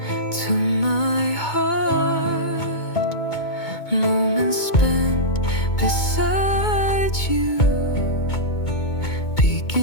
to my heart. Moments spent beside you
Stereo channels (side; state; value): right; late; 2.2 ms